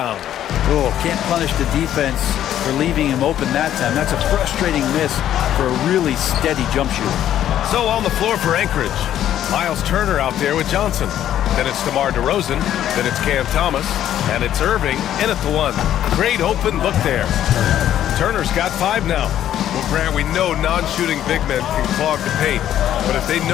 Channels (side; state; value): right; quieter; 11.3 dB